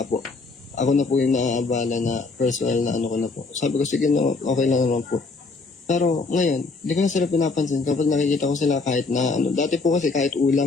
po, ako na po yung naaabala na personal na ano ko na po. Sabi ko, sige na, okay lang naman po. Pero ngayon, hindi ko na sila pinapansin kapag nakikita ko sila kahit na ano. Dati po kasi kahit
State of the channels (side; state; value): right; quieter; 3.9 dB